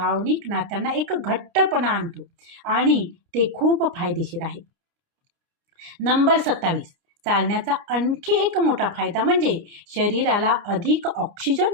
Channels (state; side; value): late; left; 29 ms